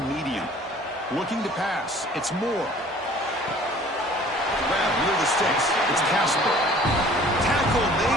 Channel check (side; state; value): both; normal; correlation 0.51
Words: medium. Looking to pass. It's Moore. Grab near the sticks. It's Casper. Tackle